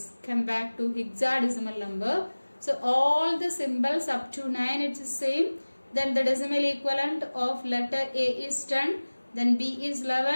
come back to hexadecimal number. So all the symbols up to 9 it's the same. Then the decimal equivalent of letter A is 10, then B is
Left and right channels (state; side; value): inverted; both; correlation -1.00